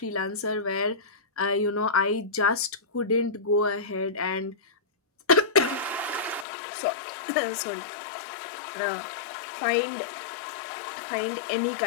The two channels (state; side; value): drops out; right; at 6.5 s